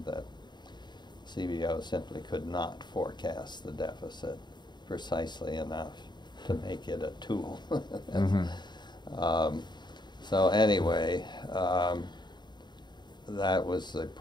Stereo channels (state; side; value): late; right; 0.21 ms